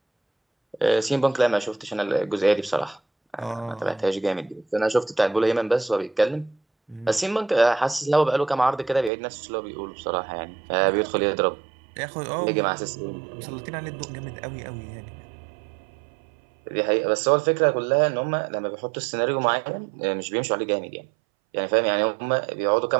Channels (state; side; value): drops out; left; at 9.1 s